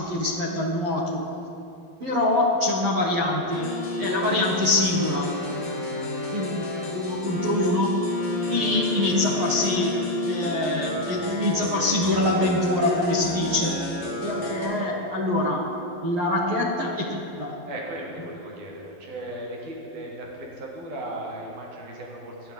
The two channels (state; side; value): late; left; 11 ms